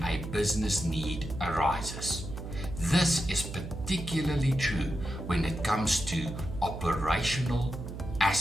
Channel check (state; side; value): noise; right; hum, 9 dB below the sound